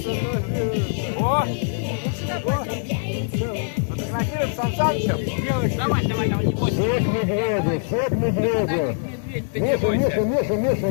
О! Фотографируем с Сан Санычем. Давай, не бойся. Все к медведю. Миша,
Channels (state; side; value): silent; right; digital silence